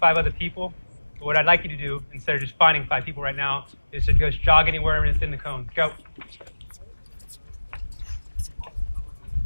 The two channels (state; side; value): inverted; both; correlation -1.00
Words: other people. But what I'd like you to do, instead of just finding 5 people right now, is to just jog anywhere and it's in the cones. Go.